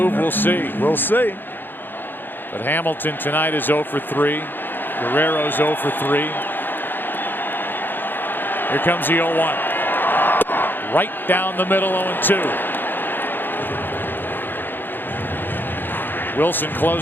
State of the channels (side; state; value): right; late; 0.095 ms